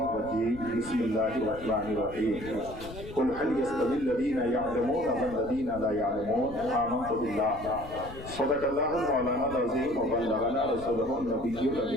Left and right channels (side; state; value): left; noise; rumble, 14 dB below the sound